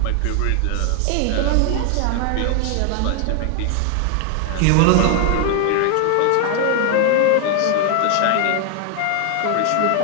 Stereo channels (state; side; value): different; both; correlation 0.00